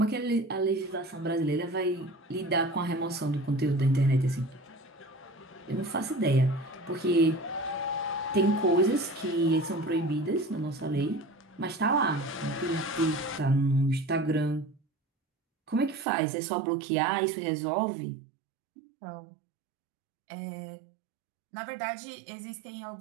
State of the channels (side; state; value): left; drops out; at 16.1 s